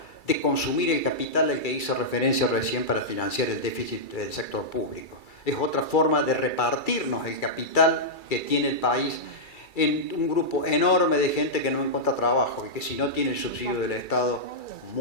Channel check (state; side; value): late; right; 2.3 ms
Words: de consumir el capital al que hice referencia recién para financiar el déficit del sector público. Es otra forma de repartirnos el capital que tiene el país en un grupo enorme de gente que no encuentra trabajo y que si no tiene el subsidio del Estado